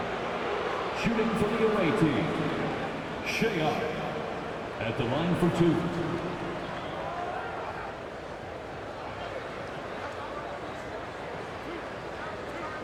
Shooting for the away team, Sheehan at the line for 2.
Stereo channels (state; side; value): identical; both; correlation 1.00